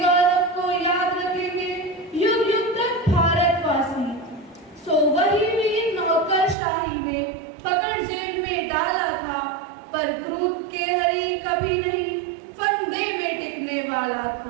को याद रखेंगे युग युग तक भारतवासी। सो वही वीर नौकरशाही में पकड़ जेल में डाला था, पर क्रूर के हरी कभी नहीं फंदे में टिकने वाला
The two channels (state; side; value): drops out; left; at 6.6 s